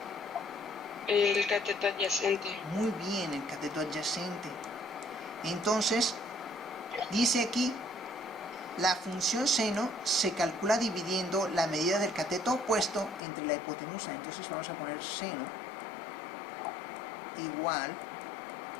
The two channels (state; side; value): drops out; right; at 13.2 s